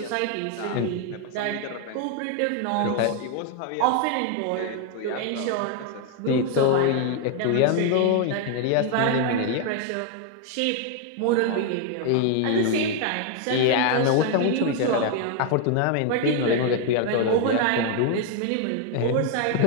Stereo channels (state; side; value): different; both; correlation 0.01